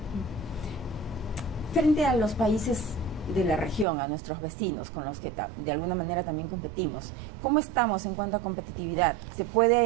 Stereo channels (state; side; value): drops out; left; at 3.9 s